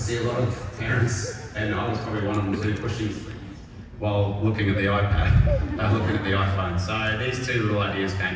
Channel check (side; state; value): both; identical; correlation 1.00